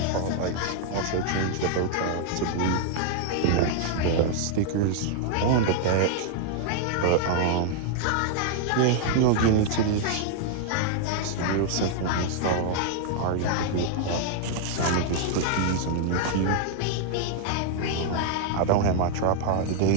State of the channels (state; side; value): different; both; correlation -0.01